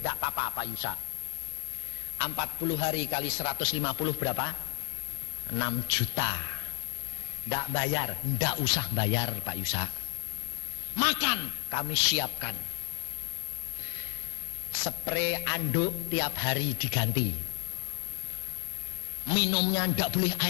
apa-apa Pak Yusa. 40 hari kali 150 berapa? 6 juta. Tidak bayar, tidak usah bayar Pak Yusa. Makan kami siapkan. Spray anduk tiap hari diganti. Minumnya tidak boleh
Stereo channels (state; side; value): silent; right; digital silence